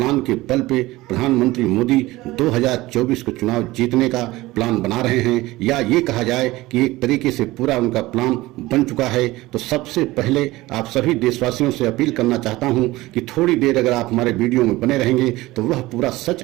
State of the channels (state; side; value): quieter; left; 18.9 dB